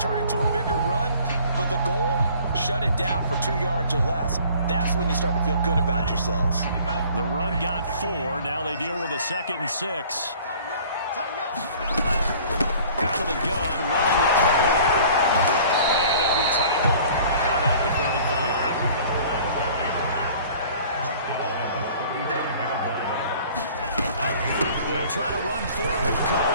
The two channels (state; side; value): inverted; both; correlation -0.50